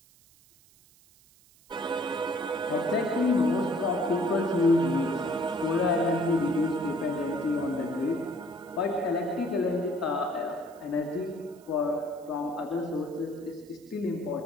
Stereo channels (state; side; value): noise; right; hiss, 28 dB below the sound